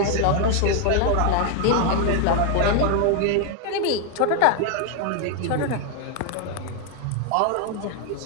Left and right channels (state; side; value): different; both; correlation 0.00